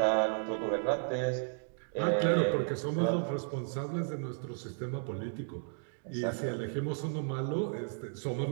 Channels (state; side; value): silent; left; digital silence